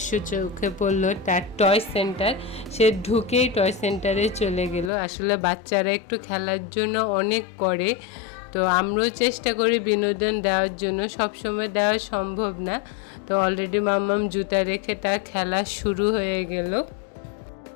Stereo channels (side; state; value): right; drops out; at 4.9 s